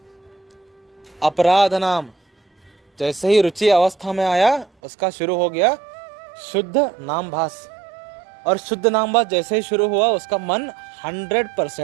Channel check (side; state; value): left; drops out; at 4.7 s